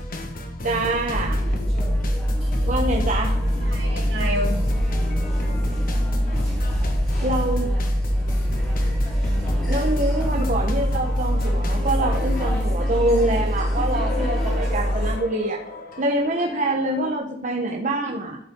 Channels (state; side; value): normal; both; correlation 0.69